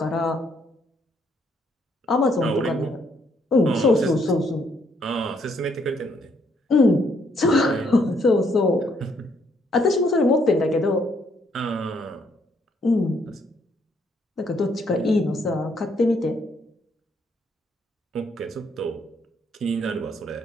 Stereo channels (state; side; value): normal; both; correlation 0.71